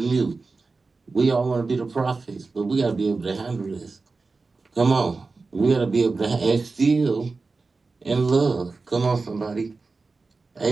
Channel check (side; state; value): left; quieter; 4.0 dB